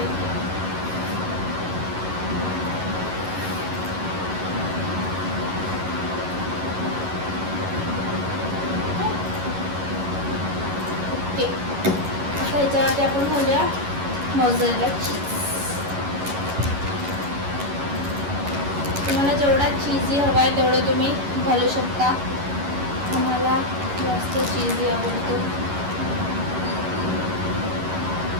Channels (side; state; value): left; late; 11 ms